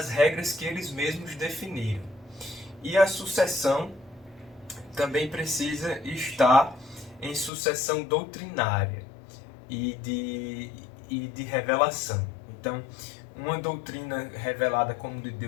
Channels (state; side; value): drops out; right; at 7.5 s